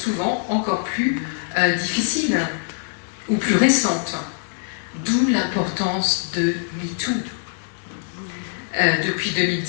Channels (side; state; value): right; silent; digital silence